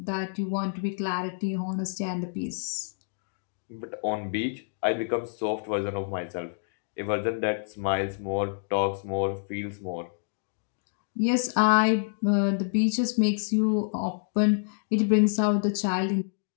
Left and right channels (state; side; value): silent; right; digital silence